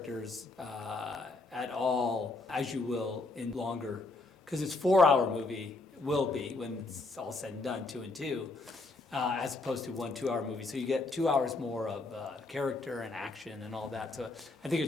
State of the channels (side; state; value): right; quieter; 3.3 dB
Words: at all as you will in longer, because it's 4-hour movie, will be when it's all said and done, 2 and 2, as opposed to 1 2-hour movie. So you get 2 hours more of character and action and all that. So I think